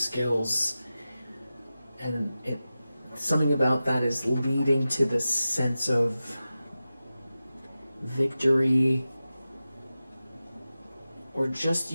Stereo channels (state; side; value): inverted; both; correlation -0.94